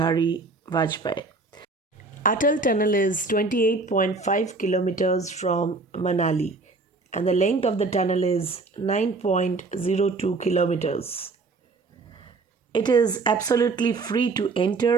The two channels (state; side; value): quieter; left; 3.7 dB